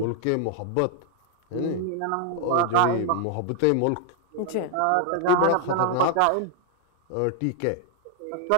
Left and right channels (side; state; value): both; different; correlation 0.00